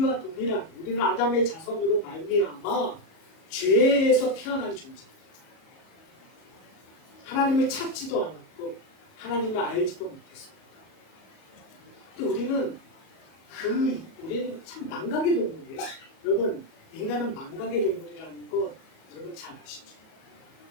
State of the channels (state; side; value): late; right; 38 ms